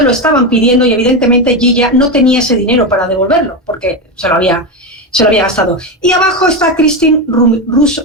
lo estaban pidiendo y evidentemente Gilla no tenía ese dinero para devolverlo porque se lo había gastado. Y abajo está Christine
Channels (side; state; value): both; normal; correlation 0.13